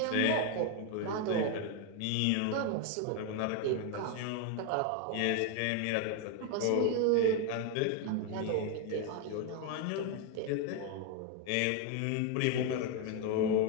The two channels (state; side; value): different; both; correlation 0.01